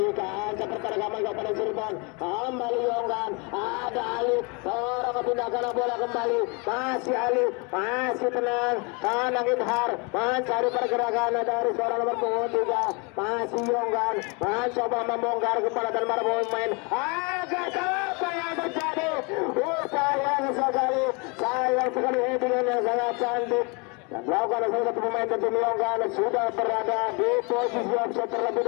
kaca pertandingan Kabupaten Cirebon. Kembali Yonggan, ada Ali seorang kepindahkan bola kembali, masih Ali masih tenang kanan Izhar mencari pergerakan dari seorang nomor 23 masih Yonggan mencoba membongkar kepala dan para pemain. Agak apa yang terjadi? Sayang sekali headingan yang sangat cantik yang dilakukan oleh salah satu pemain tim Yonggan sudah berada di posisi offside terlebih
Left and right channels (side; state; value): right; quieter; 31.3 dB